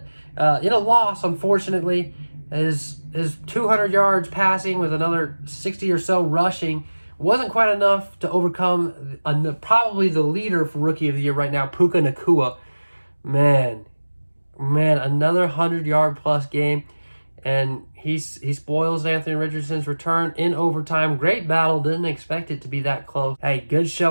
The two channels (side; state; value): both; inverted; correlation -1.00